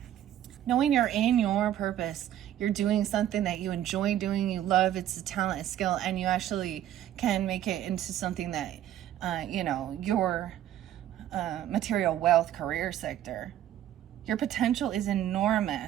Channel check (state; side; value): quieter; left; 11.8 dB